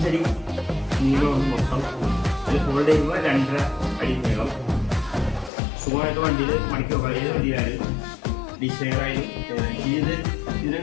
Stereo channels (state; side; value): drops out; right; at 5.5 s